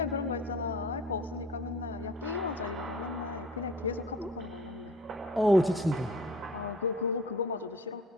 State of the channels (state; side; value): normal; both; correlation 0.45